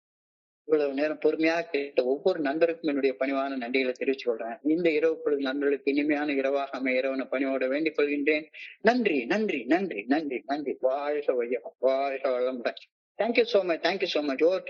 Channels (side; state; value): both; identical; correlation 1.00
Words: இவ்வளவு நேரம் பொறுமையாக கேட்ட ஒவ்வொரு நண்பருக்கும் என்னுடைய பணிவான நன்றிகளை தெரிவித்துக் கொள்றேன். இந்த இரவு பொழுது நண்பர்களுக்கு இனிமையான இரவாக அமைய இரவன பணியோட வேண்டிக் கொள்கின்றேன். நன்றி நன்றி நன்றி நன்றி நன்றி. வாழ்க வையம், வாழ்க வளமுடன். Thank you so much, thank you so much. Over